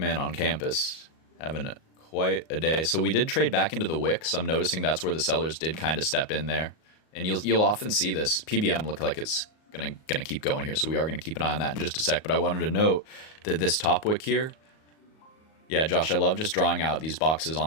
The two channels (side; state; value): right; late; 38 ms